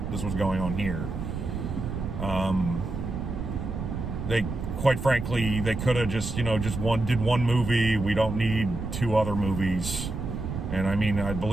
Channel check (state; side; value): noise; right; rumble, 5 dB below the sound